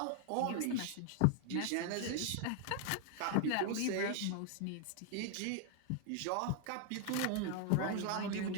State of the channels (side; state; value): both; different; correlation 0.00